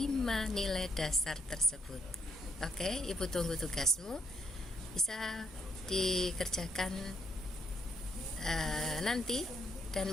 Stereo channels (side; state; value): both; normal; correlation 0.73